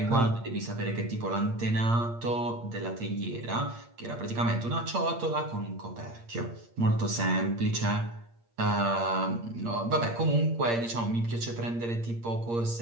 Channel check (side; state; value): left; late; 8.6 ms